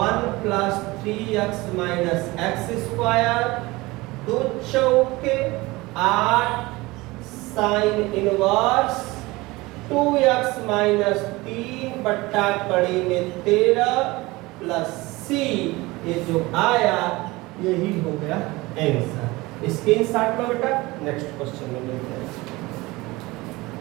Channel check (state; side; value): quieter; left; 21.5 dB